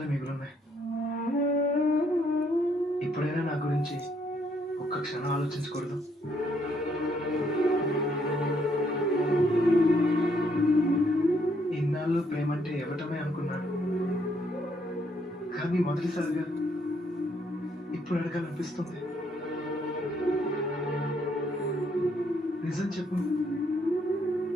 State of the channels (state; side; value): normal; both; correlation 0.71